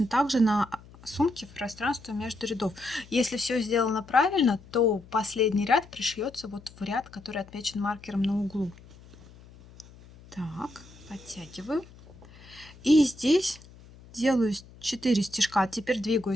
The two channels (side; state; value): left; noise; hum, 22 dB below the sound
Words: так же на сумке в пространство между рядов. Если все сделано правильно, то последний ряд пришьется вот в ряд, который отмечен маркером на углу. Так, подтягиваю. И здесь делаю 4 стежка. Теперь